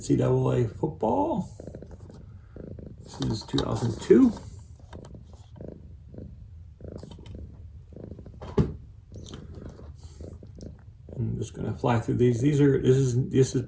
football. This is 2002. I'm just gonna fly through these. This is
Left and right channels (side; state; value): both; identical; correlation 1.00